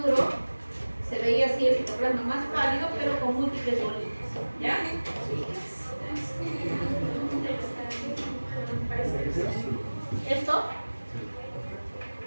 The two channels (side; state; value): both; inverted; correlation -1.00